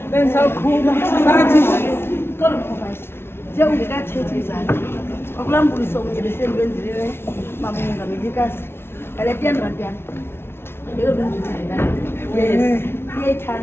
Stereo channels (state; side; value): late; right; 0.12 ms